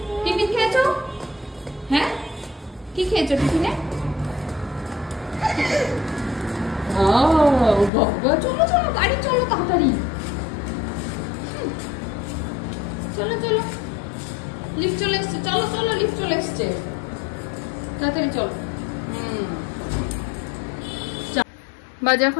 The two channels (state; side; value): drops out; right; at 7.9 s